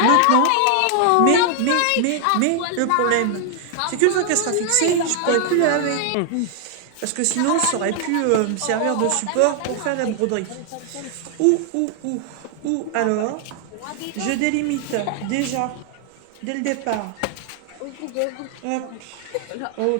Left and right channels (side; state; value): both; different; correlation 0.00